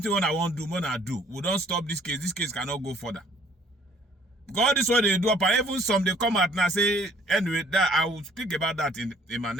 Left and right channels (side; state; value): both; normal; correlation 0.58